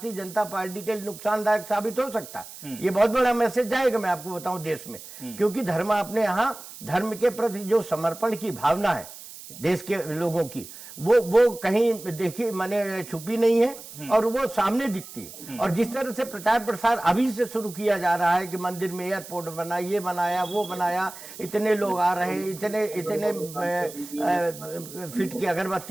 जनता पार्टी के लिए नुकसानदायक साबित हो सकता है। ये बहुत बड़ा मैसेज जाएगा, मैं आपको बताऊं, देश में, क्योंकि धर्म अपने यहाँ धर्म के प्रति जो समर्पण की भावना है देश के लोगों की, वो कहीं देखी मैंने छुपी नहीं है और वो सामने दिखती है। और जिस तरह से प्रचार प्रसार अभी से शुरू किया जा रहा है कि मंदिर में एयरपोर्ट बना, ये बनाया, वो बनाया, इतने लोग आ रहे हैं, इतने फीट की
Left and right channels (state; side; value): noise; right; hiss, 15 dB below the sound